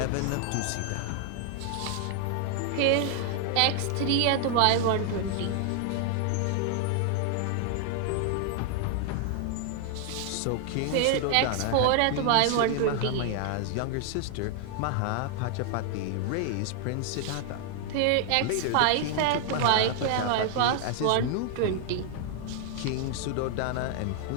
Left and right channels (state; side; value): different; both; correlation 0.00